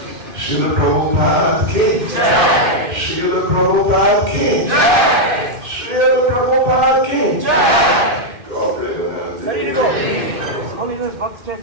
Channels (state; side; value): late; left; 2.1 ms